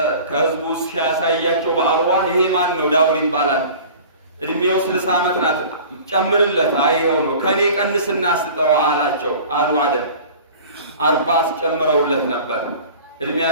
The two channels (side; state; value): both; inverted; correlation -0.42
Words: ከህዝቡ ሲያሳያቸው በአርዋህ ይሄ ማን ነው? ዳውድ ይባላል። እድሜው 60 ዓመት ናት። ጨምርለት። አይሄው ነው ከኔ ቀንስና ስጠው አላቸው አሉ አደም 40 አስጨምረውለት ነበር።